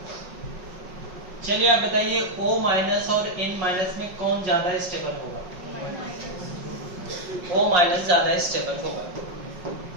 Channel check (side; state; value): left; late; 5.5 ms